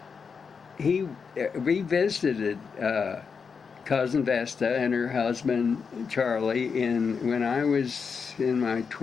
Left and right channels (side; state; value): right; quieter; 5.8 dB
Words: he revisited cousin Vesta and her husband Charlie when I was in my